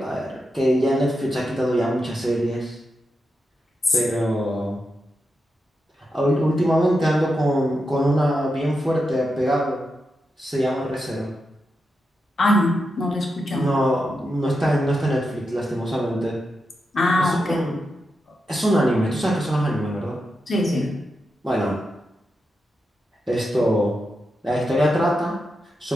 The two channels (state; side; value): normal; both; correlation 0.87